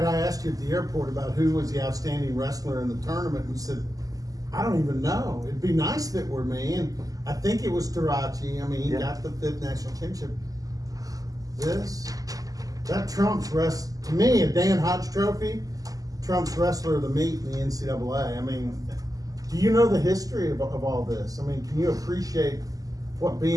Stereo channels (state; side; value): late; left; 0.17 ms